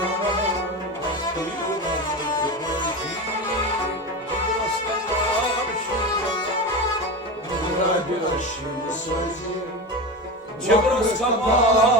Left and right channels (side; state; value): both; normal; correlation 0.24